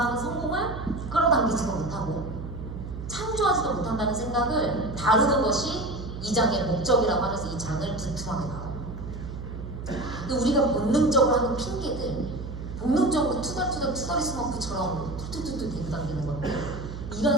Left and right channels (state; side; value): noise; right; hum, 8 dB below the sound